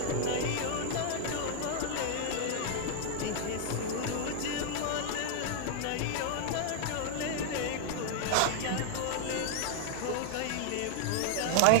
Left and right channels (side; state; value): both; different; correlation 0.00